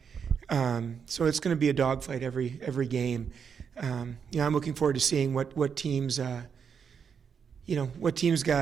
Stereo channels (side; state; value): left; quieter; 6.8 dB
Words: So it's going to be a dogfight every game. You know, I'm looking forward to seeing what teams, you know, what teams